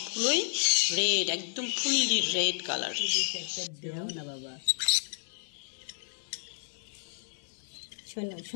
রেড, একদম ফুললি রেড কালার। না বাবা, শোনো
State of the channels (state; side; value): silent; right; 57 dB below the other